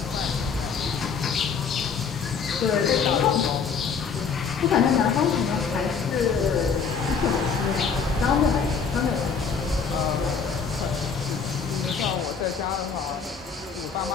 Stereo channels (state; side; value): quieter; right; 5.9 dB